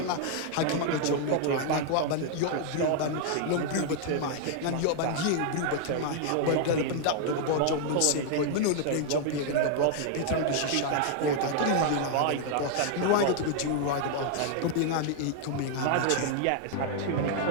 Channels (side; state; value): both; different; correlation 0.00